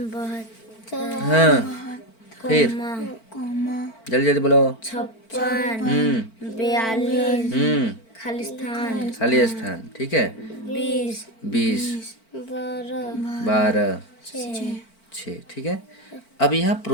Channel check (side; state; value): right; late; 4.5 ms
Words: हाँ, फिर जल्दी जल्दी बोलो। 56, 42, खाली स्थान। ठीक है, 20, 12, 6। ठीक है, अब यहाँ